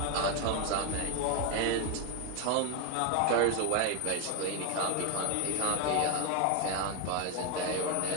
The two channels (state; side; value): different; both; correlation 0.01